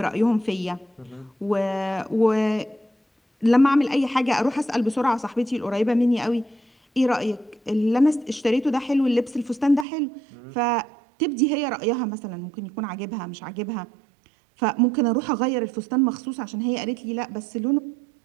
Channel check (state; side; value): drops out; left; at 9.9 s